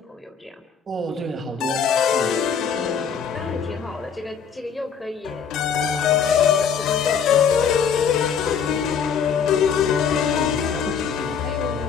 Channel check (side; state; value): right; quieter; 7.0 dB